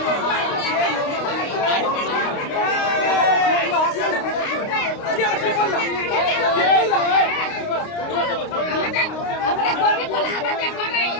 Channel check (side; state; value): right; late; 29 ms